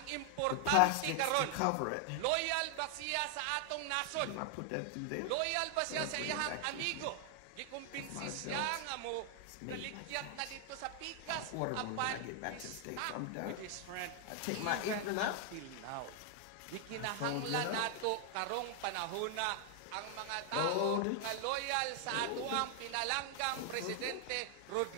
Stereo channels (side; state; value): both; different; correlation 0.00